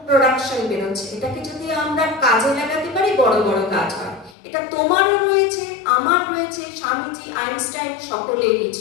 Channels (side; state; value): right; drops out; at 4.4 s